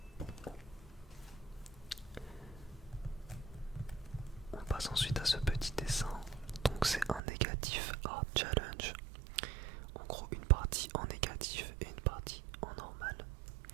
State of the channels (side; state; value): left; drops out; at 7.2 s